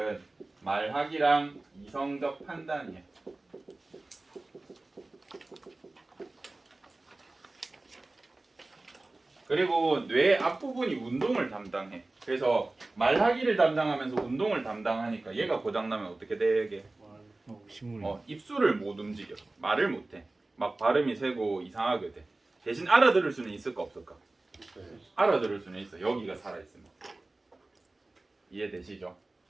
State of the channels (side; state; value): left; quieter; 3.0 dB